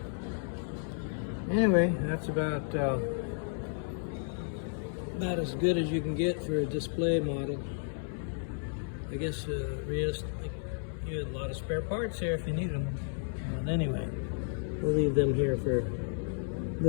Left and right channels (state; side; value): silent; right; 56 dB below the other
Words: Anyway, that's about as good as you can get for a display model. I guess realistically, you have a lot of spare parts here if you need them. But anyway, we'll leave them here for